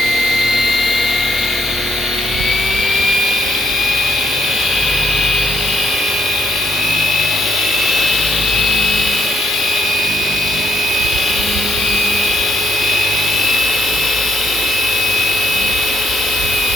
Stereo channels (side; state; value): both; normal; correlation 0.73